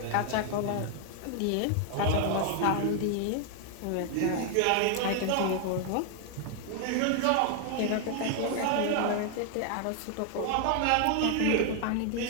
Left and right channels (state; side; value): different; both; correlation 0.00